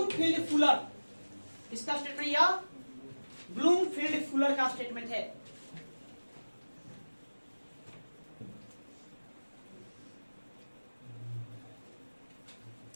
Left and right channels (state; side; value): inverted; both; correlation -1.00